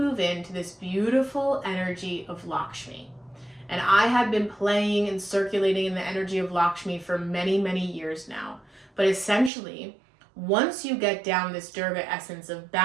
into this beautiful energy of Lakshmi. And I have been playing and circulating in the energy of Lakshmi for many, many years now. But essentially, once you get down this Durga essence of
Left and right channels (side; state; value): left; drops out; at 9.5 s